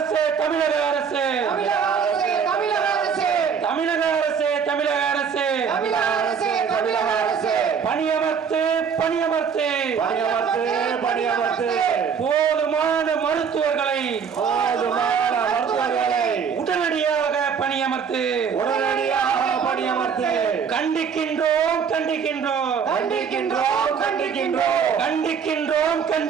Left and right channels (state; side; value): quieter; left; 6.7 dB